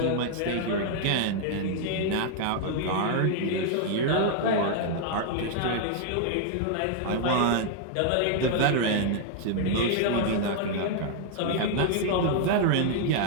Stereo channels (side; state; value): both; different; correlation 0.00